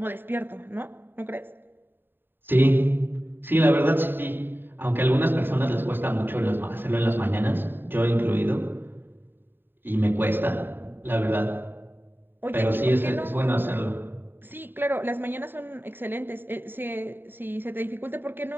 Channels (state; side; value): late; left; 0.096 ms